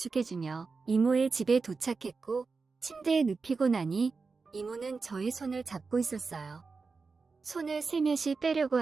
이모의 집에 도착했고 침대에 눕히고 나니 이모는 저의 손을 잡고 있었어요. 손을 슬며시 빼려고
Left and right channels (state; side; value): quieter; left; 4.5 dB